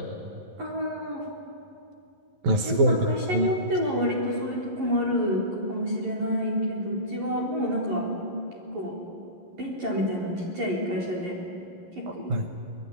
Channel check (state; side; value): late; left; 11 ms